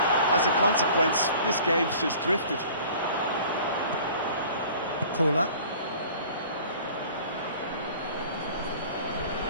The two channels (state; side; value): inverted; both; correlation -0.47